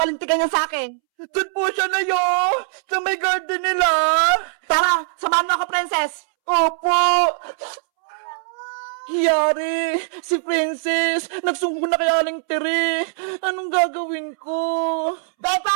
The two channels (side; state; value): left; silent; 65 dB below the other